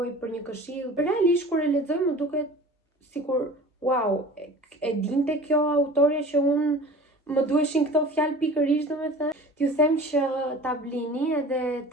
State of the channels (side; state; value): both; normal; correlation 0.41